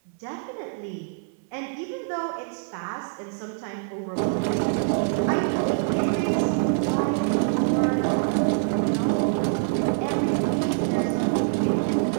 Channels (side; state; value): left; silent; 62 dB below the other